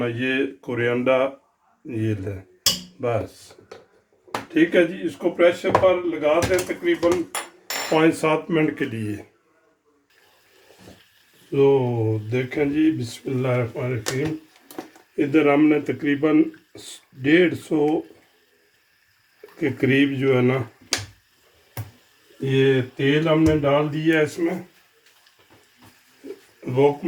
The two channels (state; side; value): identical; both; correlation 1.00